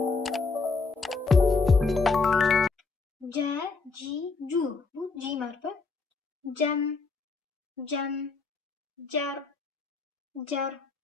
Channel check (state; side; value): quieter; right; 4.3 dB